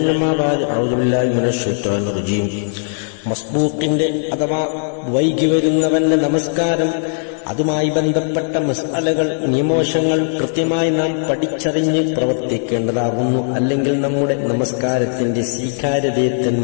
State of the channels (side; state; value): right; silent; digital silence